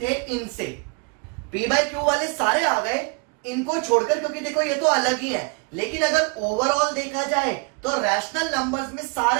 थे इनसे। p by q वाले सारे आ गए इनको छोड़कर, क्योंकि देखो ये तो अलग ही है। लेकिन अगर ओवरऑल देखा जाए तो रैशनल नंबर्स में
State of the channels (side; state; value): left; quieter; 33.1 dB